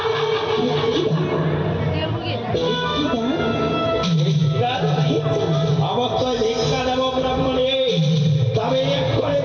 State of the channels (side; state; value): both; identical; correlation 1.00